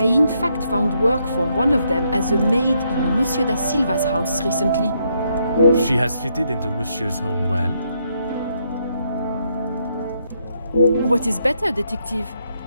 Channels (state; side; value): inverted; both; correlation -0.76